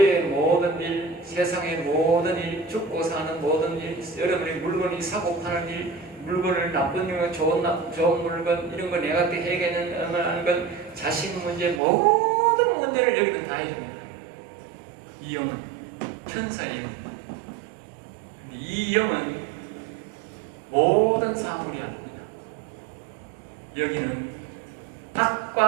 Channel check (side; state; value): left; drops out; at 11.8 s